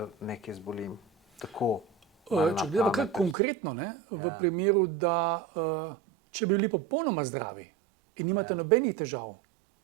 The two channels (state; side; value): drops out; left; at 3.4 s